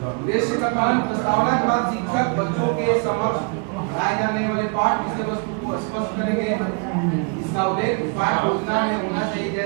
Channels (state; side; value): quieter; left; 36.2 dB